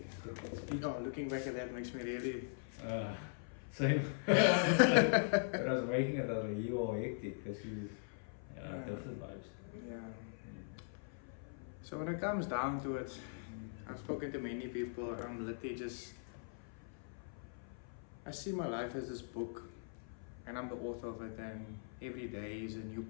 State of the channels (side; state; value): right; silent; 51 dB below the other